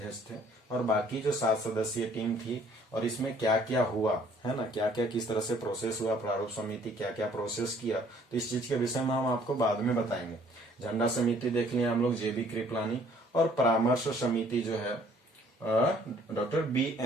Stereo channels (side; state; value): both; normal; correlation 0.59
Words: थे, और बाकी जो 7 सदस्यीय टीम थी और इसमें क्या क्या हुआ, है ना, क्या क्या किस तरह से प्रोसेस हुआ, प्रारूप समिति क्या क्या प्रोसेस किया, तो इस चीज के विषय में हम आपको बाद में बताएंगे। झंडा समिति देख लिया हम लोग, जेबी कृपलानी, और परामर्श समिति जो है डॉक्टर